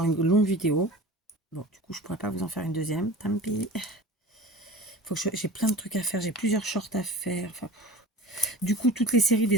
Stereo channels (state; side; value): normal; both; correlation 0.37